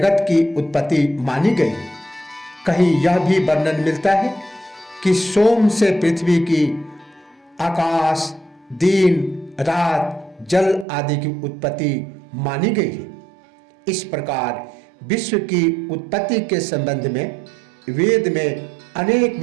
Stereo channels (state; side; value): drops out; left; at 10.9 s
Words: की उत्पत्ति मानी गई। कहीं यह भी वर्णन मिलता है कि सोम से पृथ्वी की, आकाश, दिन, रात, जल आदि की उत्पत्ति मानी गई है। इस प्रकार विश्व की उत्पत्ति के संबंध में वेद में अनेक